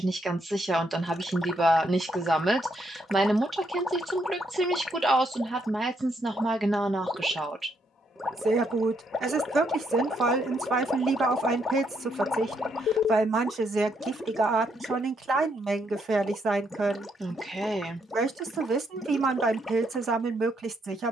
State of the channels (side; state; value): both; normal; correlation 0.75